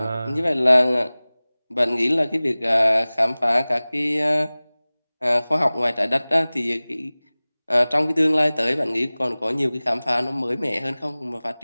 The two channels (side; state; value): both; inverted; correlation -0.99